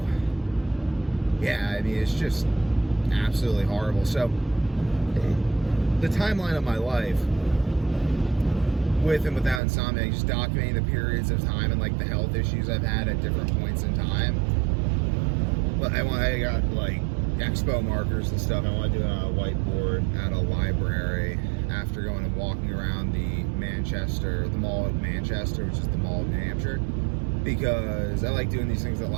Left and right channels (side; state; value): left; drops out; at 9.6 s